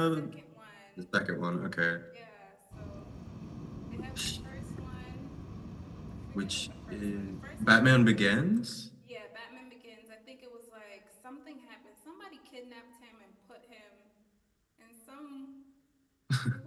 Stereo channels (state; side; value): identical; both; correlation 1.00